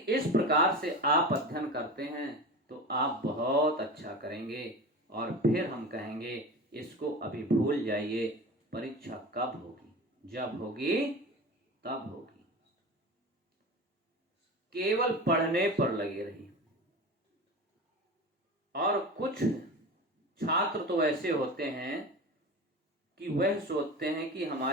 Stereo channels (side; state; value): both; normal; correlation 0.31